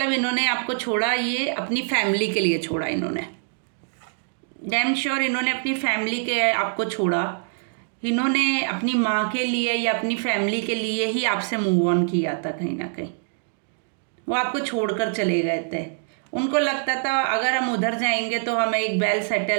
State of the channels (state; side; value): silent; left; digital silence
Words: इन्होंने आपको छोड़ा, ये अपनी फैमिली के लिए छोड़ा इन्होंने, डैम श्योर इन्होंने अपनी फैमिली के आपको छोड़ा। इन्होंने अपनी माँ के लिए या अपनी फैमिली के लिए ही आपसे मूव ऑन किया था कहीं ना कहीं। वो आपको छोड़कर चले गए थे। उनको लगता था अगर हम उधर जाएंगे तो हमें एक वेल